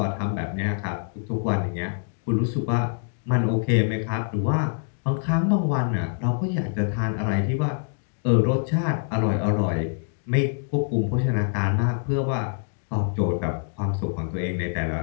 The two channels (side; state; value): right; silent; digital silence